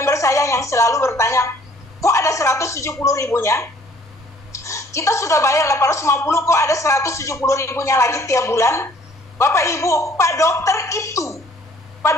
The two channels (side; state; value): both; normal; correlation 0.58